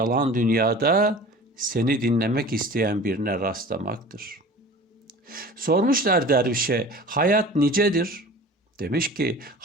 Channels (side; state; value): both; normal; correlation 0.41